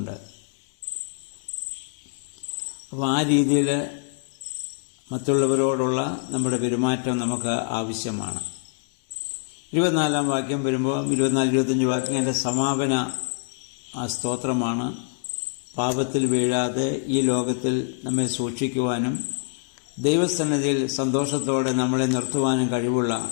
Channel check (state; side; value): silent; right; digital silence